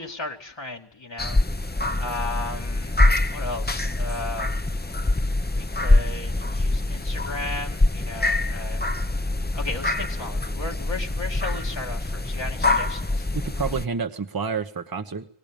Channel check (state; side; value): normal; both; correlation 0.67